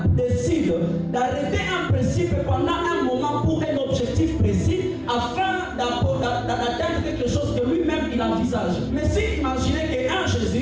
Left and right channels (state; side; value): identical; both; correlation 1.00